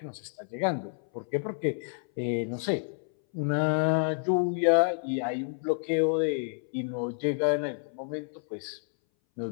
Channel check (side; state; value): right; silent; 58 dB below the other